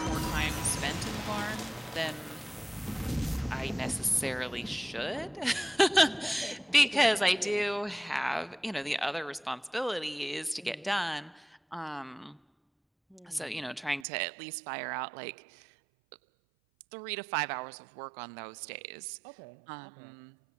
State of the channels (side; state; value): left; drops out; at 14.1 s